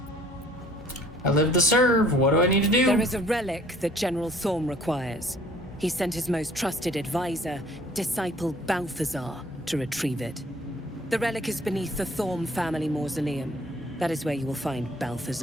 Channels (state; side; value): normal; both; correlation 0.55